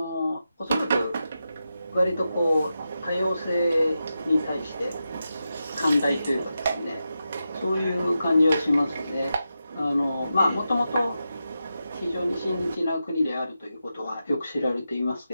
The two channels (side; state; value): both; inverted; correlation -0.89